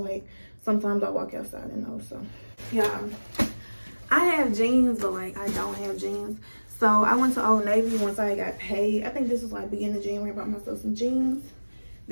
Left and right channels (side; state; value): both; inverted; correlation -1.00